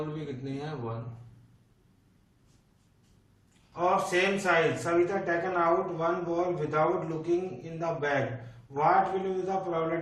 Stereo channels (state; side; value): identical; both; correlation 1.00